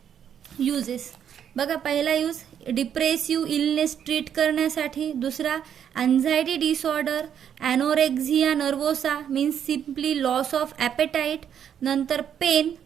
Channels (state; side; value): quieter; left; 8.8 dB